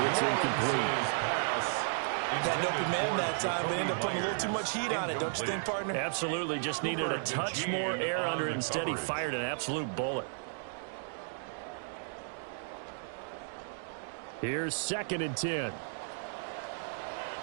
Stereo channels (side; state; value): left; silent; digital silence